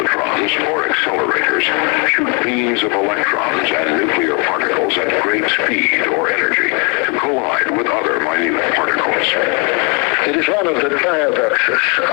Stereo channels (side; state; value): right; quieter; 34.8 dB